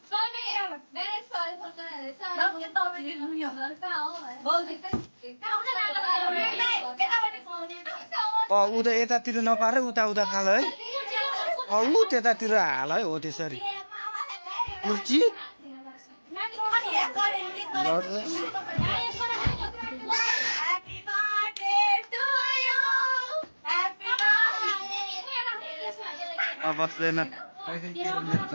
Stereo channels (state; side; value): inverted; both; correlation -1.00